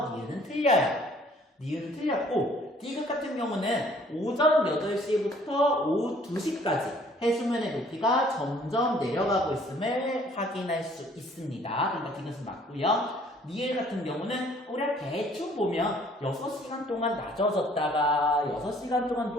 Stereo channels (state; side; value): normal; both; correlation 0.58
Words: 니은은 틀려요. 니은은 틀렸고, 디귿 같은 경우는 오전 8시부터 오후 2시까지 해수면의 높이가 점점 내려가고 있음을 확인할 수 있습니다. 그러니까 디귿은 맞고요. 니을 같은 경우는 우리가 대충 보면 6시간 동안 낮아졌다가 6시간 동안